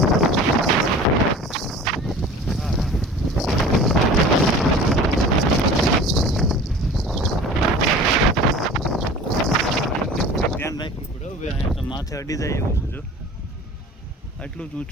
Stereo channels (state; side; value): normal; both; correlation 0.42